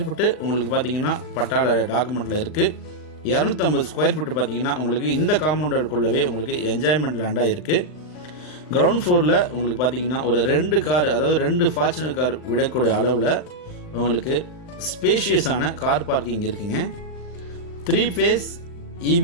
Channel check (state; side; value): late; right; 39 ms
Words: ஃபீட்டு உங்களுக்கு பார்த்தீங்கன்னா பட்டாள டாக்குமெண்ட்டில் இருக்குது. 250 ஸ்கொயர் ஃபீட்டு பார்த்தீங்கன்னா உங்களுக்கு இந்த காம்பவுண்டுக்குள்ளவே உங்களுக்கு என்ஜாய்மெண்ட் லேண்டாக இருக்குது. கிரவுண்ட் ஃப்ளோரில் உங்களுக்கு பார்த்தீங்கன்னா ஒரு 2 கார், அதாவது 2 ஃபார்ச்சுனர் கார் விடக்கூடிய அளவில் உங்களுக்கு ஸ்பேஷியஸான கார் பார்க்கிங் இருக்குங்க. 3 ஃபேஸ்